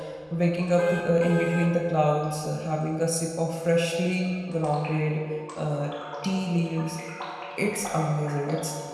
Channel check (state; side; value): identical; both; correlation 1.00